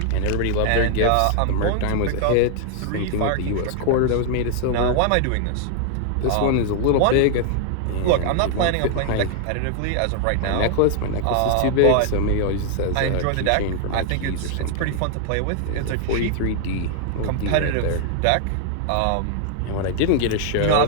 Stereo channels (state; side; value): different; both; correlation -0.01